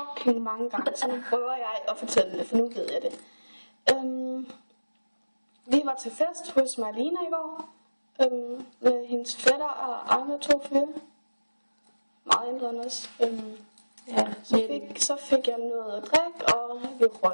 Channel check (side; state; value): both; inverted; correlation -1.00